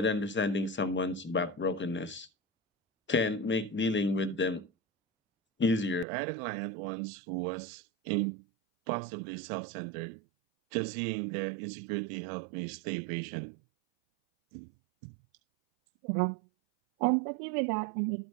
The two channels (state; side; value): drops out; left; at 6.1 s